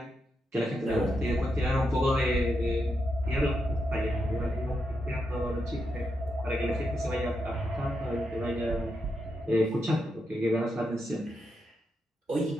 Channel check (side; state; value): both; normal; correlation 0.84